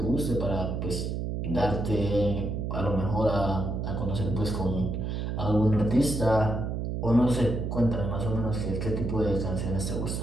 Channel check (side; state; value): right; noise; hum, 2 dB below the sound